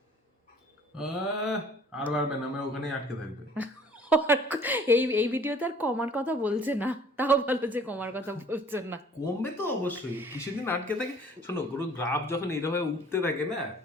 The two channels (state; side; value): normal; both; correlation 0.53